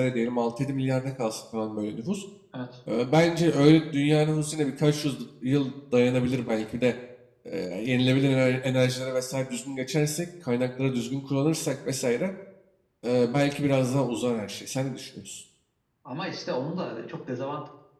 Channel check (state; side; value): identical; both; correlation 1.00